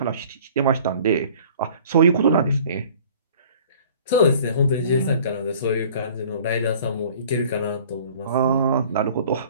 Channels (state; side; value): inverted; both; correlation -0.50